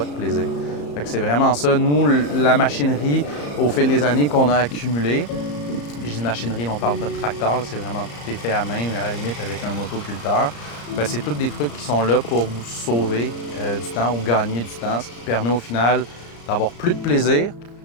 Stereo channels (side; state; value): right; late; 34 ms